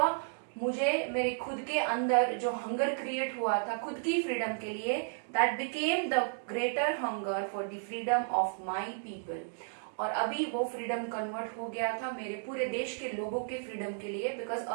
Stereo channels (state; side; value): silent; left; digital silence